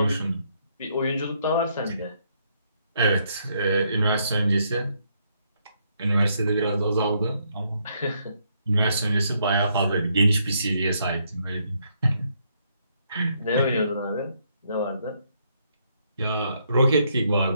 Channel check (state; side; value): inverted; both; correlation -0.73